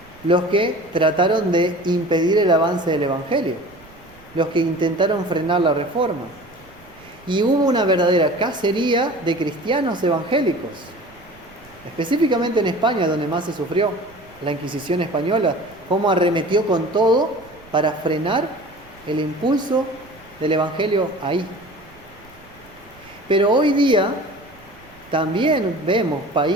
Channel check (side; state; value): right; noise; rumble, 25 dB below the sound